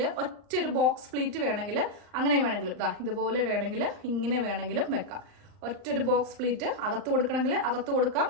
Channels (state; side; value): late; left; 39 ms